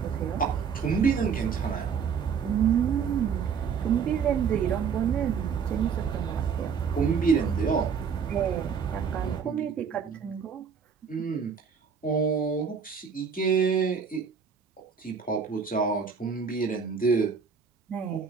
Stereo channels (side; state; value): left; quieter; 6.4 dB